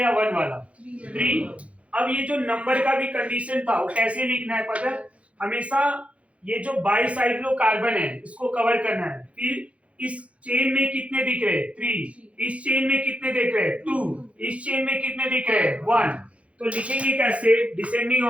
1 वाला, 3। अब ये जो नंबर का भी कंडीशन था वो कैसे लिखना है पता है, हमेशा ये जो बाईसाइक्लो कार्बन है इसको कवर करना है, फिर इस चेन में कितने दिख रहे हैं 3, इस चेन में कितने दिख रहे हैं 2, इस चेन में कितने दिख रहे हैं 1। तो लिखेंगे कैसे डिसेंडिंग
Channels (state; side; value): late; left; 0.063 ms